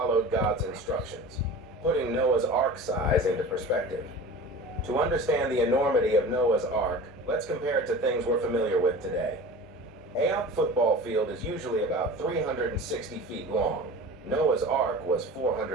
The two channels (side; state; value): both; normal; correlation 0.36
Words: God's instructions, putting Noah's ark size into perspective. To understand the enormity of Noah's ark, let's compare it to things we're familiar with today. A football field is usually about 360 feet long. Noah's ark was